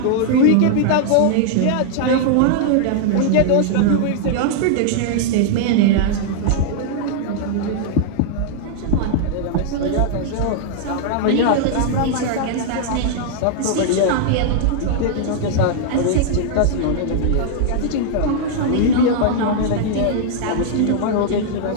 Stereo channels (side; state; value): both; different; correlation -0.01